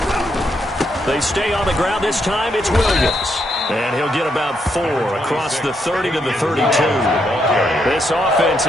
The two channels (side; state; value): both; normal; correlation 0.78